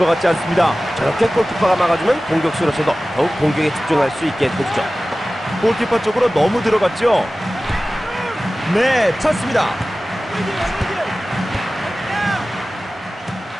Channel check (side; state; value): both; normal; correlation 0.96